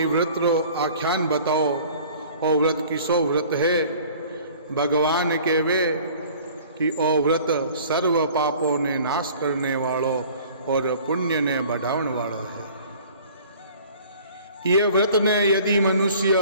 व्रत रो आख्यान बताओ और व्रत किसो व्रत है। भगवान कहवे कि ओ व्रत सर्व पापों ने नाश करने वालो और पुण्य ने बढ़ावण वालो है। ये व्रत ने यदि मनुष्य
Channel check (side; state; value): both; inverted; correlation -0.48